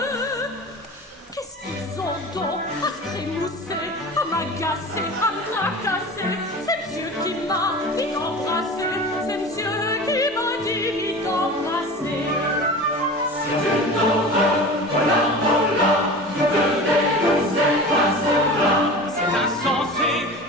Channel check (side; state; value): both; normal; correlation 0.35